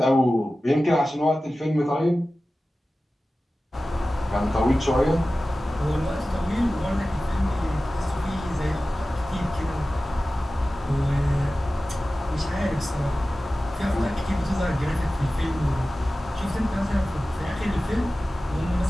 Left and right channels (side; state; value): both; normal; correlation 0.96